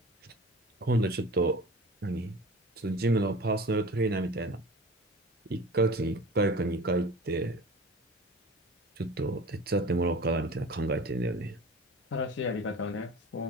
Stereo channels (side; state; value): both; normal; correlation 0.39